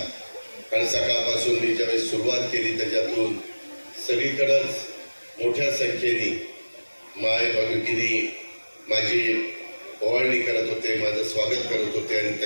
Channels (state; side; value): inverted; both; correlation -1.00